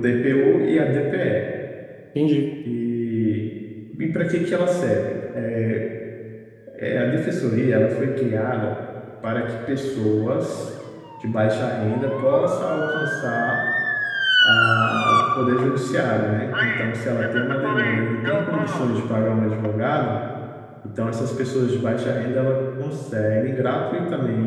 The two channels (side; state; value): both; identical; correlation 1.00